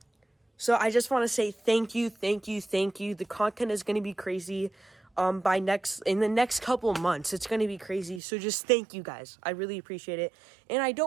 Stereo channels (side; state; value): left; drops out; at 8.2 s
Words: So I just want to say thank you, thank you, thank you. The content is going to be crazy in the next couple months. It's going to be crazy. So just thank you guys. I really appreciate it. And I